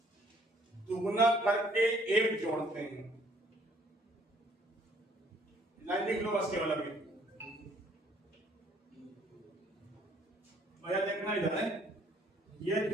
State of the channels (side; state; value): both; normal; correlation 0.62